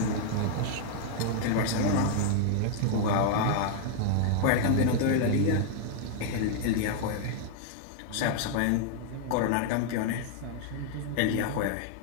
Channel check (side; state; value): both; different; correlation 0.00